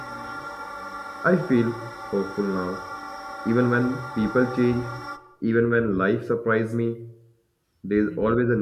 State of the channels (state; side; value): identical; both; correlation 1.00